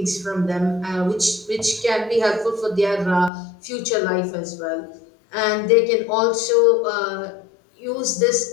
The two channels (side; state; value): right; drops out; at 3.3 s